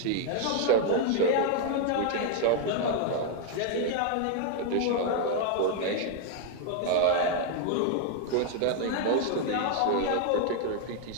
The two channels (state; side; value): different; both; correlation 0.00